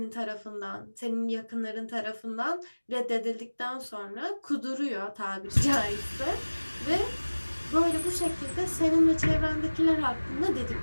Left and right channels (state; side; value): inverted; both; correlation -1.00